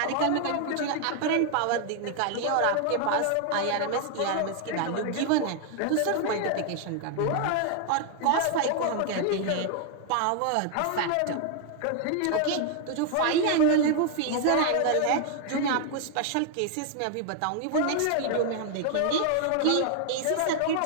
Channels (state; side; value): different; both; correlation 0.00